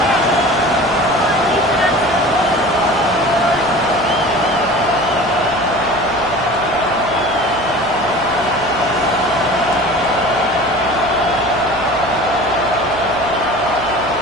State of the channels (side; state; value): right; noise; hum, 16 dB below the sound